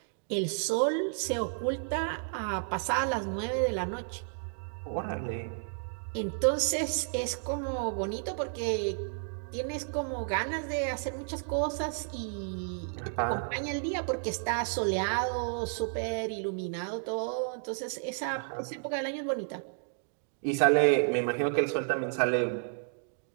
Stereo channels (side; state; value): left; silent; digital silence